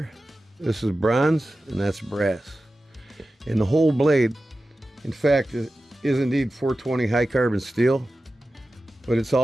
This is bronze, and that's brass. And the whole blade, in fact, is indeed 420 high carbon steel, but it's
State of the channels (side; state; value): both; normal; correlation 0.94